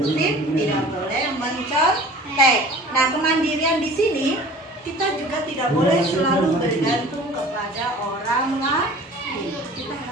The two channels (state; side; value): normal; both; correlation 0.44